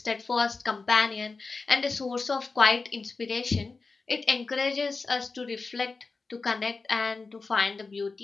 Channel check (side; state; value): right; quieter; 4.1 dB